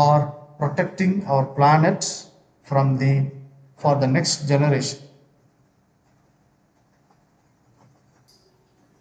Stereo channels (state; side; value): identical; both; correlation 1.00